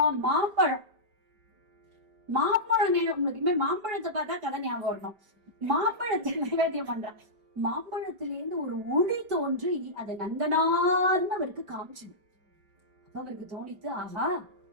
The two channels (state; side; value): late; left; 5.2 ms